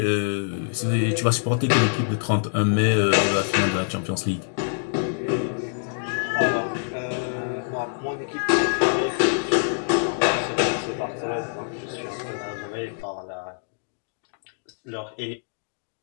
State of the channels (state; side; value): silent; right; digital silence